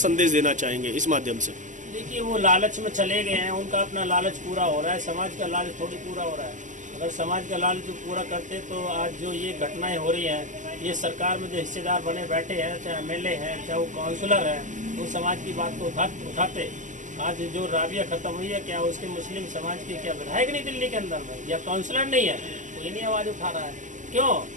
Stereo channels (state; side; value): late; left; 0.36 ms